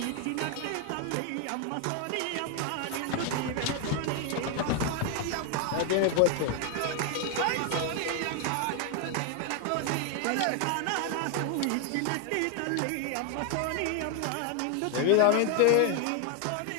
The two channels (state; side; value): different; both; correlation 0.00